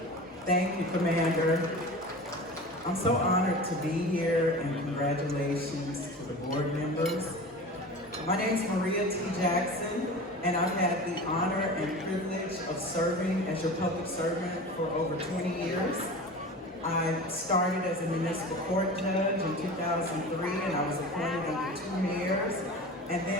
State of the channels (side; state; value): both; normal; correlation 0.34